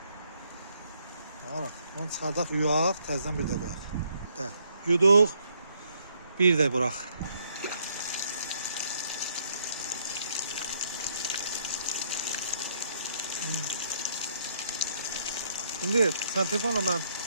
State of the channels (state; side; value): inverted; both; correlation -0.70